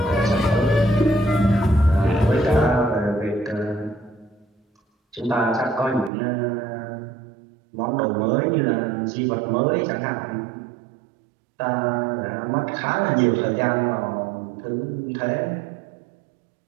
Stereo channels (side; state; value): left; drops out; at 6.1 s